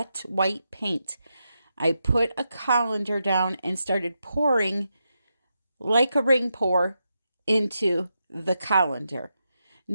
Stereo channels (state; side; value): inverted; both; correlation -0.86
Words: white paint. I put a colander down and started pouring like a ring pour into the colander.